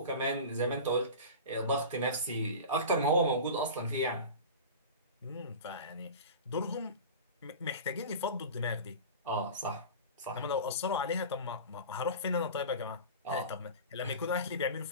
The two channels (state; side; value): inverted; both; correlation -0.33